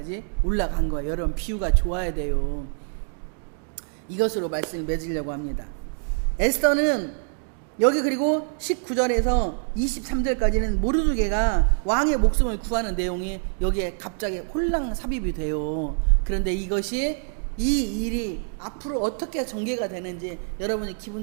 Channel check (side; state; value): left; silent; digital silence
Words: 올라간 거예요. 여러분 비유가 좋아야 돼요. 이것으로 말씀을 맺으려고 합니다. 에스더는 여기 그리고 19절에서 23절까지는 모르드게가 왕의 목숨을 구하는 내용이 여기에 갑자기 홀랑 삽입이 돼요. 그런데 이것이 이 일이 앞으로 어떻게 전개가 되는지 여러분이 기분